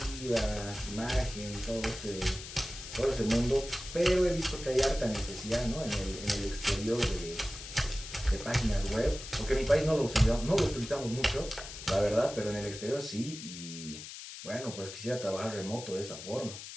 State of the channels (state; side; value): noise; left; hiss, 11 dB below the sound